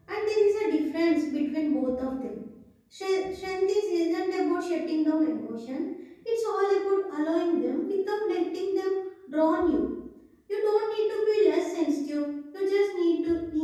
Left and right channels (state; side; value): identical; both; correlation 1.00